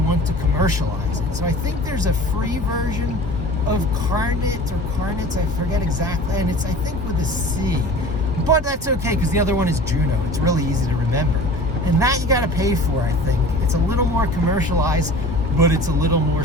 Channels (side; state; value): both; normal; correlation 0.40